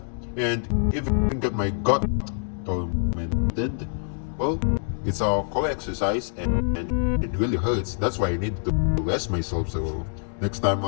and even get my gut tormented. Well, it's a core exercise, and it really hurts. That's why I need to rest myself. So Next time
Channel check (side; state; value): right; silent; 61 dB below the other